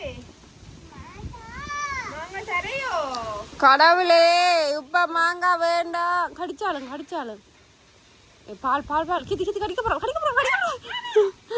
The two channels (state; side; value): identical; both; correlation 1.00